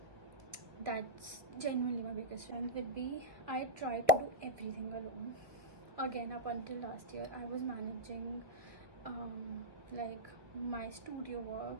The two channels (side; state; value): left; late; 1.6 ms